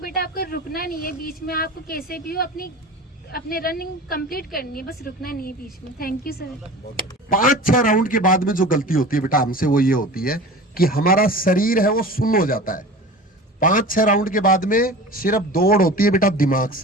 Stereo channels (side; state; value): both; normal; correlation 0.36